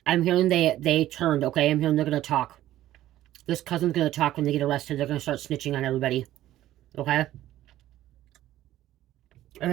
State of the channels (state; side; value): quieter; left; 14.0 dB